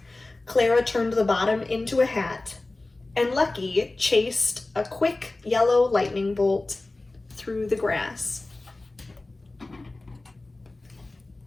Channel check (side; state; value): right; quieter; 3.0 dB